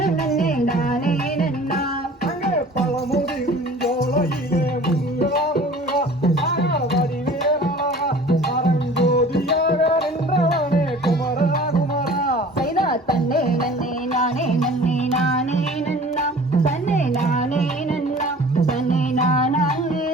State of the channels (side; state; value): both; normal; correlation 0.46